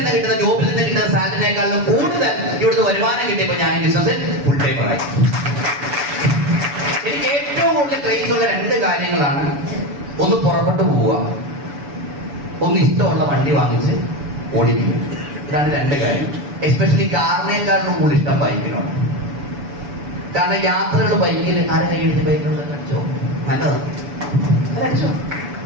കിട്ടുന്ന, ജോബിൽ നിന്ന് കിട്ടുന്ന സാലറിനേക്കാളും കൂടുതൽ ഇവിടുന്ന് വരുമാനം കിട്ടിയപ്പോ ഞാൻ ഈ ബിസിനസ്സിൽ ഫുൾ ടൈമറായി. കൂടുതൽ ക്രേസ് ഉള്ള രണ്ട് കാര്യങ്ങളാണ്. ഒന്ന് പുറപ്പെട്ടു പോവുക, ഒന്ന് ഇഷ്ടമുള്ള വണ്ടി വാങ്ങിച്ച് ഓടിക്കുക. ഇതാണ് രണ്ട് കാര്യം. എസ്പെഷ്യലി കാറിനേക്കാളും കൂടുതൽ ഇഷ്ടം ബൈക്കിനോട്. കാരണം യാത്രകൾ ബൈക്കിൽ ആരെ കൈയടിച്ച് ബൈക്കിനോട് അടിച്ചോ, നല്ലതാണ്, അടിച്ചോ.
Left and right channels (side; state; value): left; late; 6.9 ms